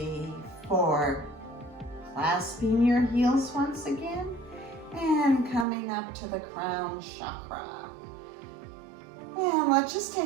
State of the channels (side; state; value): left; drops out; at 5.7 s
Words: 4. Clasping your heels once again and coming up to the crown chakra. And let's just